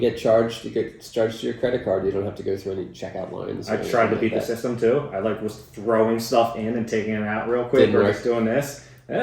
charged. You get charged to your credit card. You don't have to go through any checkout lines. I tried to beat the system too. I was throwing stuff in and taking it out real quick, or just doing this.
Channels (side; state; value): both; identical; correlation 1.00